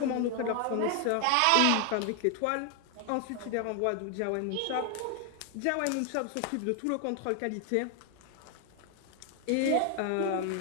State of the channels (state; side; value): different; both; correlation 0.00